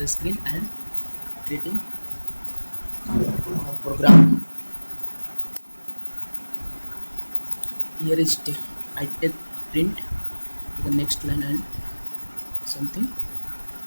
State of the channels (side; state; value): both; inverted; correlation -1.00